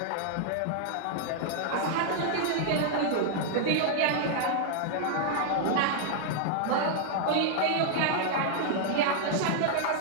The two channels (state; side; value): different; both; correlation -0.01